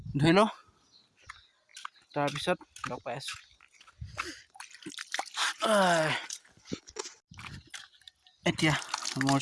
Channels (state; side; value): identical; both; correlation 1.00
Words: ধুই লওঁ, তাৰপিছত লগ পাই আছোঁ। এতিয়া মোৰ